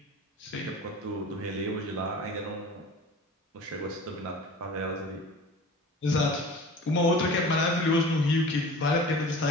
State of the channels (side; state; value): both; normal; correlation 0.40